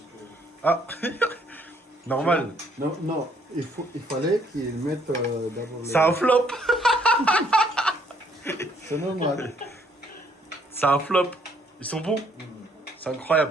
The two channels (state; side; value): normal; both; correlation 0.66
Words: Ah, normal. Non, non, il fallait qu'il mette d'abord. C'est un flop. C'est normal. C'est un flop. Ils sont bons. C'est